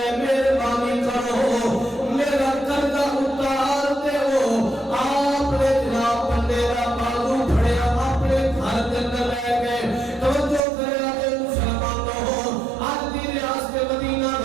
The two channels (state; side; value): drops out; left; at 10.6 s